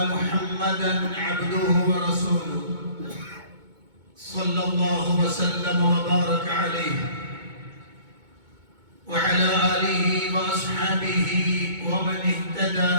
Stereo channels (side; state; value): left; late; 2.2 ms